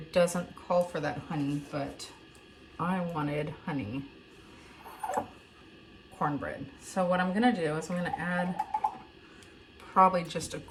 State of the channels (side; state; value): both; identical; correlation 1.00